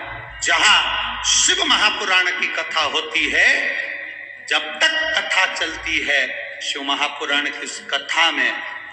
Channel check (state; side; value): identical; both; correlation 1.00